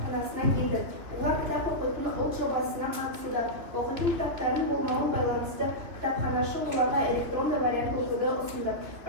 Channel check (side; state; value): left; late; 3.2 ms